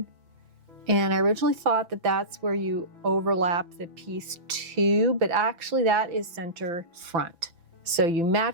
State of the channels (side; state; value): left; late; 5.9 ms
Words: And I originally thought that that's where you overlap the piece too, but actually that is center front. So you